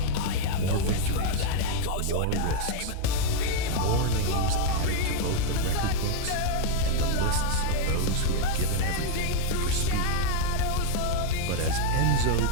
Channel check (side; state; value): both; different; correlation 0.00